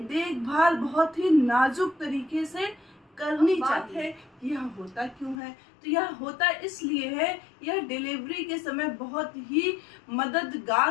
बहुत ही नाजुक तरीके से करनी चाहिए। यह होता क्यों है? तो यह होता इसलिए है, यह डिलीवरी के समय बहुत ही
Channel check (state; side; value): drops out; right; at 5.4 s